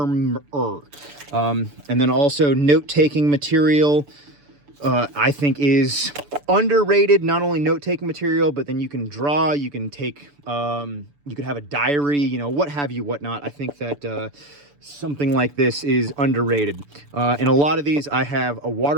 And then also note-taking material, I think is underrated. Not only note-taking material, but then you can draw, you can take, you could have a diary, what have you, whatnot. I think that something like this is underrated. In a lot of these, I have a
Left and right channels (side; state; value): left; late; 6.9 ms